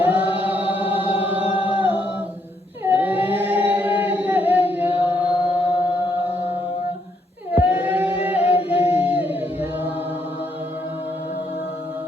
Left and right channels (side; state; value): both; normal; correlation 0.74